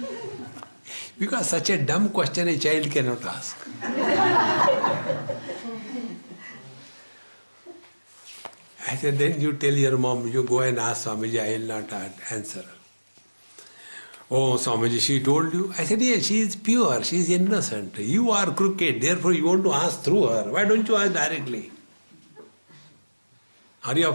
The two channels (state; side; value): inverted; both; correlation -1.00